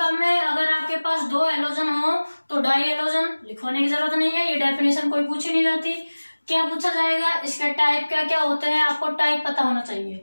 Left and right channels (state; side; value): inverted; both; correlation -1.00